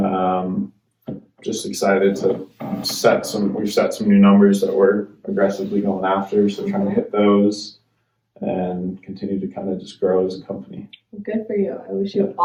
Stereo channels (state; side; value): identical; both; correlation 1.00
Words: just excited to we've set some new numbers that we're aggressively going after. So trying to hit those and continue to kind of just grow as a company. Good for you. I wish you